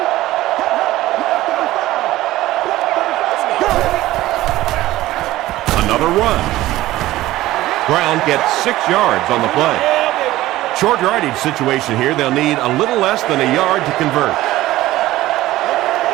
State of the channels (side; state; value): left; quieter; 16.2 dB